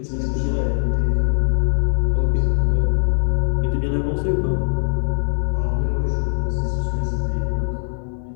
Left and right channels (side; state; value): right; silent; 65 dB below the other